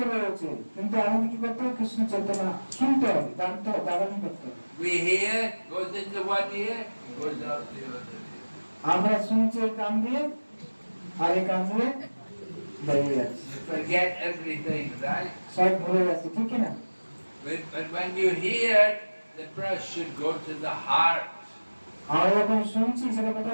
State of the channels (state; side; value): inverted; both; correlation -1.00